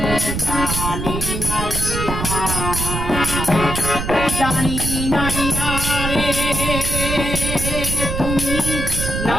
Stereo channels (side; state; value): right; noise; rumble, 3 dB below the sound